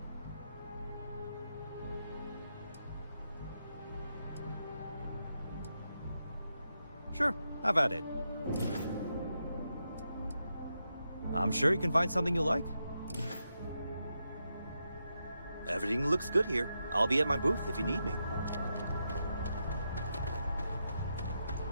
Sure, have at it. I'm sure you can find something you like. Everything looks good here. I'll be at my booth if you need me.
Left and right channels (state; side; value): inverted; both; correlation -0.85